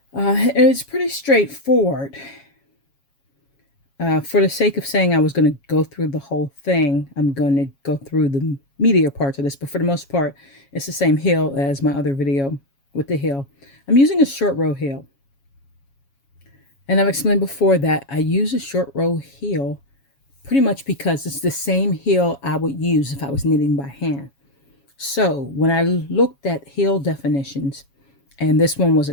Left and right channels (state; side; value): late; right; 7.3 ms